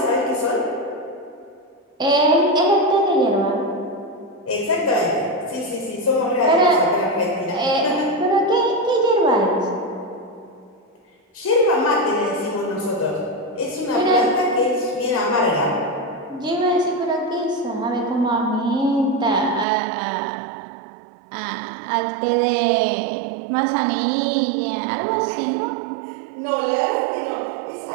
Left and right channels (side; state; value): left; drops out; at 19.7 s